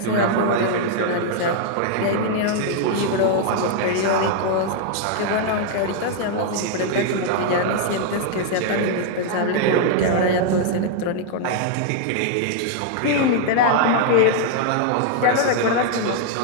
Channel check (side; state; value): both; different; correlation 0.00